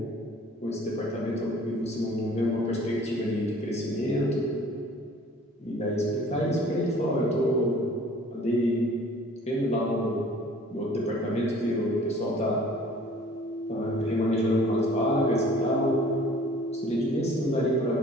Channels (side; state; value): both; normal; correlation 0.51